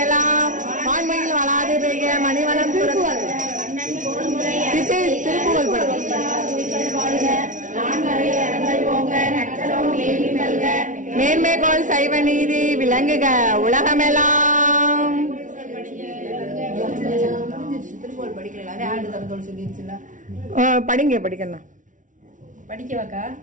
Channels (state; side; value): late; left; 0.37 ms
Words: எல்லாம் வான்மையில் வளாது பெய்க மணிவளம் மேன்மைகோள் சைவ நீதி விளங்குக உலகமெல்லாம். படிங்க படிக்கணும் படிக்கவாக்கா